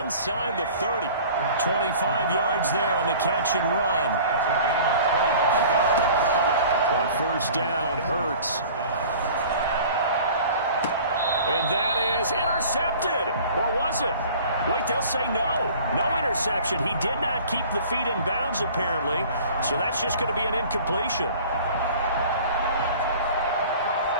the 30. 25 yards there on the catch and run. On 1st down, Hurts. And that is intercepted. Or was it? Wait, they'll say no. No interception. He did not keep the feet in bounds, apparently. So that's just going to be an incompletion.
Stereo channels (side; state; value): both; inverted; correlation -0.45